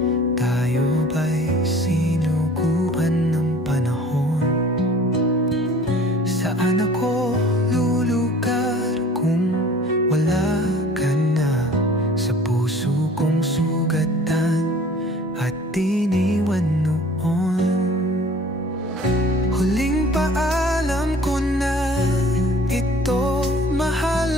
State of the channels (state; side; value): normal; both; correlation 0.48